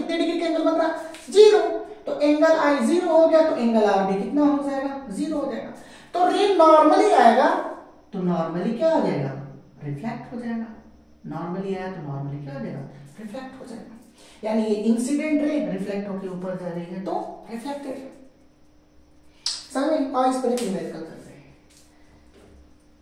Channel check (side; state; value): both; identical; correlation 1.00